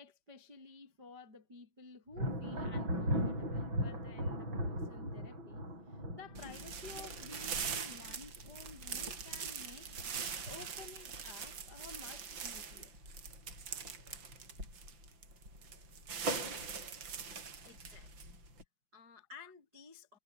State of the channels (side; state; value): left; late; 5.4 ms